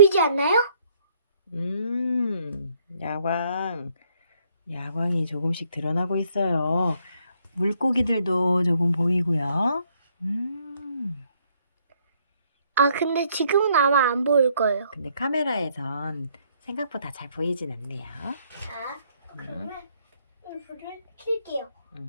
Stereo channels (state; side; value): inverted; both; correlation -0.68